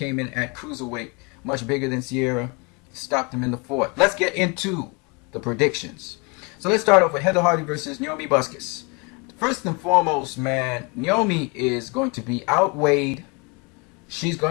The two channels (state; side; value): quieter; right; 30.5 dB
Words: in at cruiserweight, much bigger than Sierra. Stopped him in the 4th. Let's get into the predictions. So let's start off with Heather Hardy versus Naomi Busquets. First and foremost, man, Naomi is going to be outweighed. She's